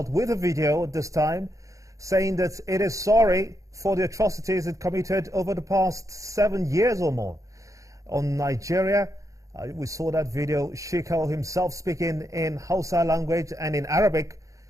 with a video at this time saying that it is sorry for the atrocities it committed over the past 7 years or more on Nigeria. We saw that video, Shekau himself speaking in Hausa language and in Arabic,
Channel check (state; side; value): late; left; 0.16 ms